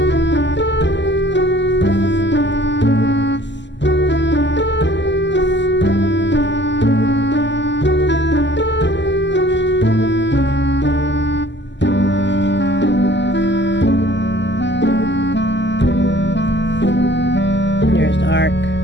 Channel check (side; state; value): right; late; 0.53 ms